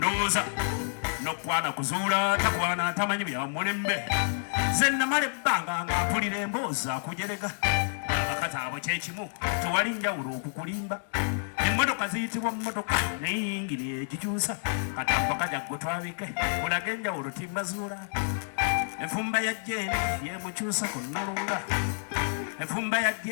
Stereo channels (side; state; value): right; silent; digital silence